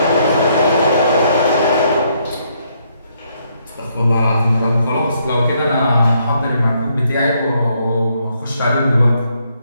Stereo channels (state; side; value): inverted; both; correlation -0.72